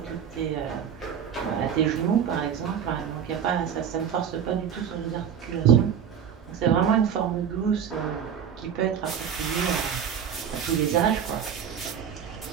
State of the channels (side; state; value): left; quieter; 8.2 dB